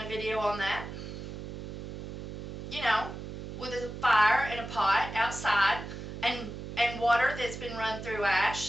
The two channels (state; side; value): noise; right; hum, 8 dB below the sound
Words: video on that. You know, with a fire and a pot outside, and water that's been run through